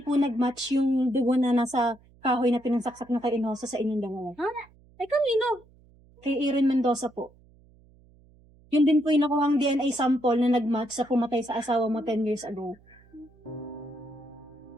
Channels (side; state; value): right; noise; hum, 28 dB below the sound